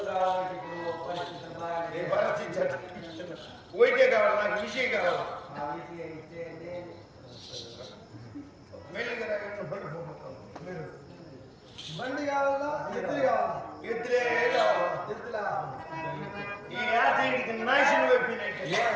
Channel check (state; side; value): identical; both; correlation 1.00